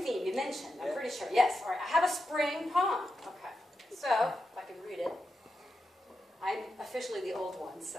theme, you mentioned, I'm pretty sure. Yes, all right. I have a spring poem. Okay. So, if I can read it. I'm officially the old one, so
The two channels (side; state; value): both; normal; correlation 0.88